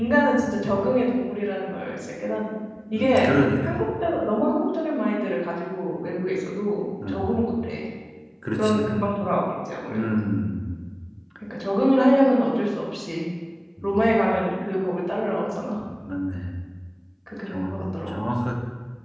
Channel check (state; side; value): identical; both; correlation 1.00